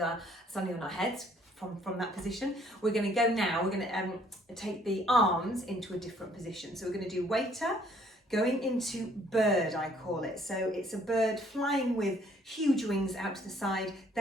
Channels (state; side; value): normal; both; correlation 0.62